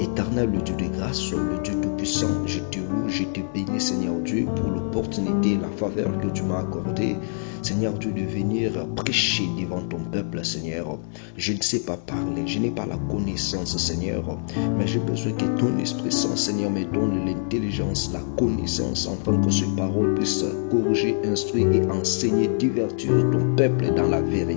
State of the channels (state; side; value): silent; right; digital silence